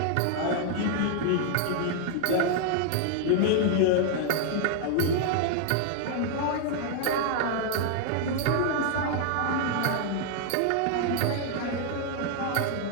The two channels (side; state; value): both; different; correlation 0.00